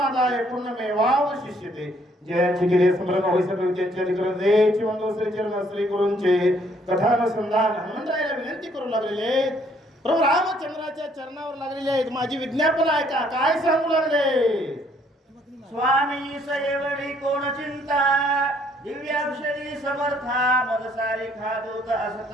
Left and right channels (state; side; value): normal; both; correlation 0.65